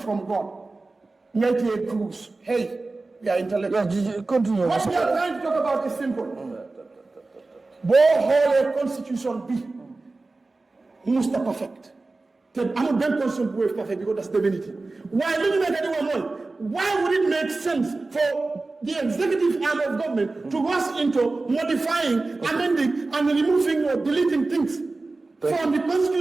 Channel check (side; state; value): left; quieter; 3.4 dB